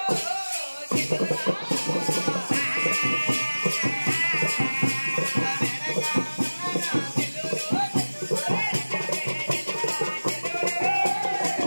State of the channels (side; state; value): both; inverted; correlation -1.00